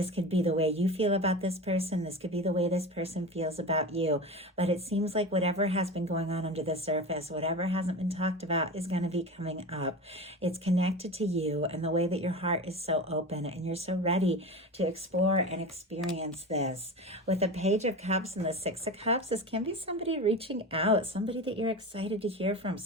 could be the way you feel about this person. This could be the way this person feels about you. But it seems like whatever has been going on under the surface, whatever hasn't been talked about is going to be coming up. It's connected to you and the way that your heart is so open and you're so ready to explore and experience this. With the Page of Cups and the Six of Cups, this can be somebody reaching out, somebody that you're excited to hear from,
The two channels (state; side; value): normal; both; correlation 0.28